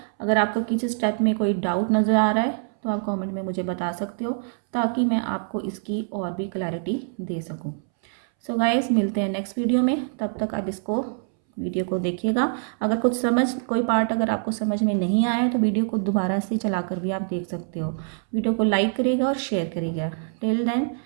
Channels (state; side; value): silent; left; 62 dB below the other